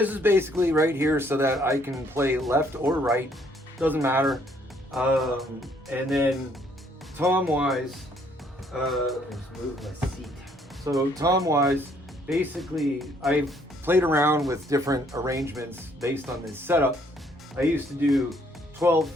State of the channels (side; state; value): both; normal; correlation 0.66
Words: is basically right here so that I can play left or right, doesn't matter. And then tom-wise, let's move my seat. So tom-wise, basically I've played around with different arrangements based on this setup. I used to do 12,